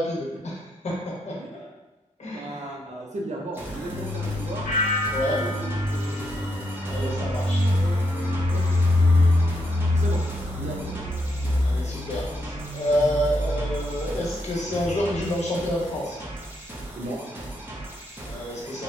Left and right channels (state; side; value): normal; both; correlation 0.79